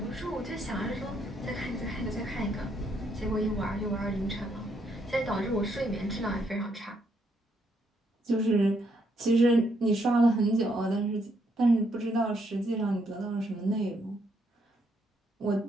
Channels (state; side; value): normal; both; correlation 0.74